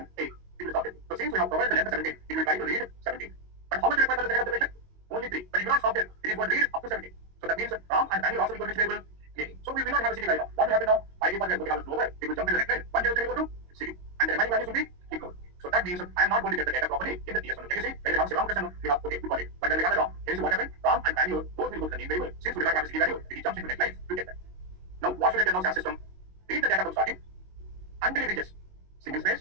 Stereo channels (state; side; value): late; left; 22 ms